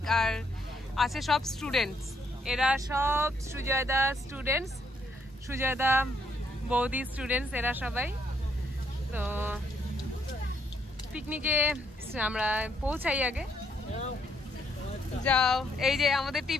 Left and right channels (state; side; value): normal; both; correlation 0.72